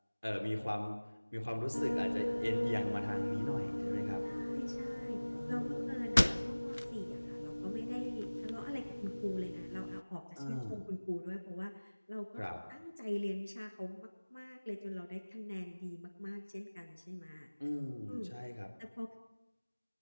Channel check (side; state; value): both; inverted; correlation -1.00